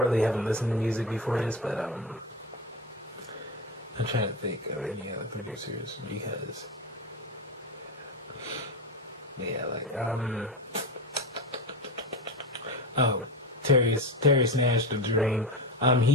haven't listened to music before this, but I'm trying to think of any other producers because, yeah, Terry Nash, The Dream.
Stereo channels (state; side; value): normal; both; correlation 0.20